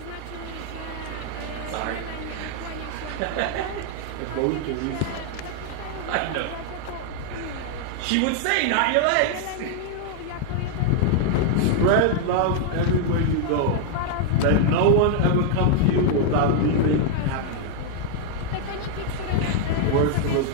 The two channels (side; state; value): both; different; correlation 0.00